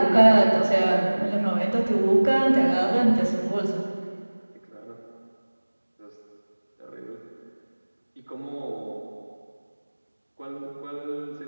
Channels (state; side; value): inverted; both; correlation -1.00